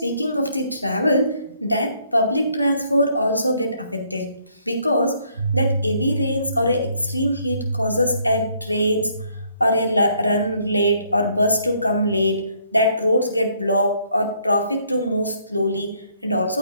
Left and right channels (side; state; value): both; inverted; correlation -0.68